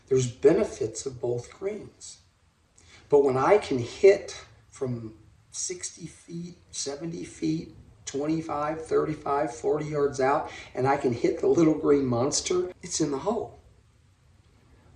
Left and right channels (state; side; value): identical; both; correlation 1.00